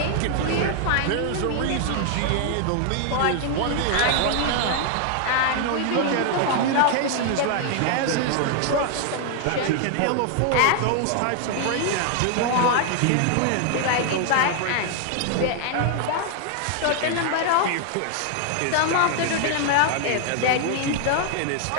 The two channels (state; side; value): different; both; correlation 0.00